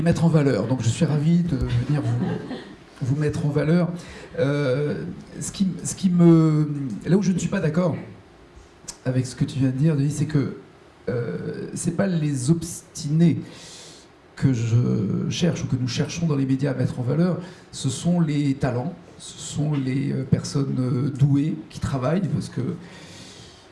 mettre en valeur. Donc, je suis ravi de venir vous mettre en valeur. Là où je ne suis pas d'accord avec ce que tu viens de dire, Denis, c'est que c'est pas les obstinés que je cherche ou que nous cherchons dans les médias à mettre en valeur, ce sont les talents, ce sont les personnes douées qui travaillent, parce que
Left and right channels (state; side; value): identical; both; correlation 1.00